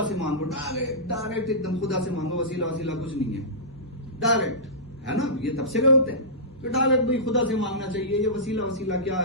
سے مانگو، ڈائریکٹ ایک دم خدا سے مانگو، وسیلہ کچھ نہیں ہے، ڈائریکٹ، ہے نا؟ یہ تبصرے ہوتے ہیں کہ ڈائریکٹ بھائی خدا سے مانگنا چاہیے، یہ وسیلہ کیا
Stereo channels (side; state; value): both; normal; correlation -0.19